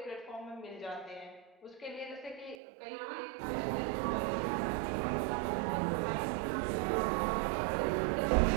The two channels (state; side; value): drops out; left; at 2.6 s